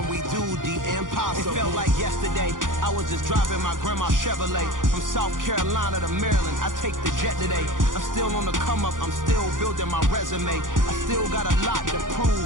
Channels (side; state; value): left; late; 0.89 ms